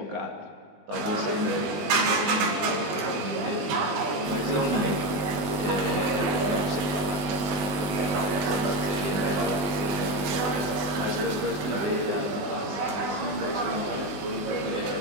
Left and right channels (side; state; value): left; late; 20 ms